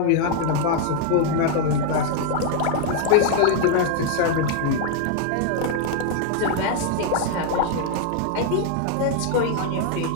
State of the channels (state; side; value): different; both; correlation 0.00